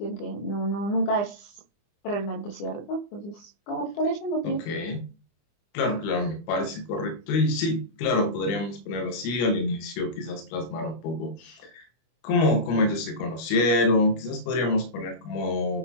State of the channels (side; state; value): right; late; 25 ms